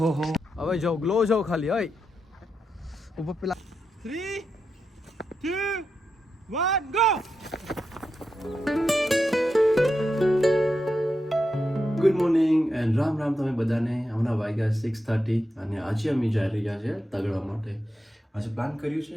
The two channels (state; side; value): normal; both; correlation 0.86